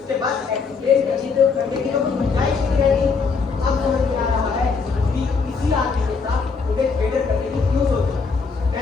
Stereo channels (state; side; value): quieter; right; 4.9 dB